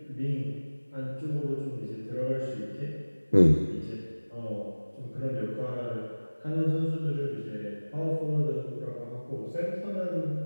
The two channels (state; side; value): inverted; both; correlation -1.00